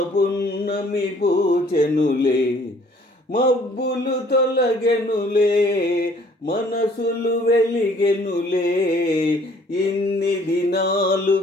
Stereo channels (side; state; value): both; normal; correlation 0.58